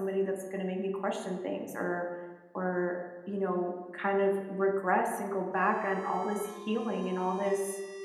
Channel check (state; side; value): identical; both; correlation 1.00